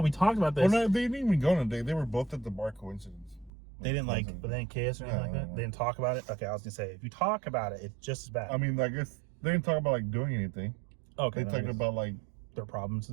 talked about this. Well, no, they didn't even go on a date. They were both at the bar. Coincidence. They didn't like, but they didn't kiss or anything like that. No. They didn't talk about it. Okay, I was gonna say, if you talk about it, it's just as bad. I mean, I guess they didn't talk about like doing anything. Okay, They talked about like their problems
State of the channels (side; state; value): left; drops out; at 3.5 s